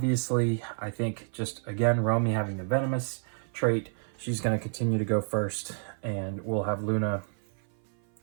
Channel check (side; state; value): left; silent; 56 dB below the other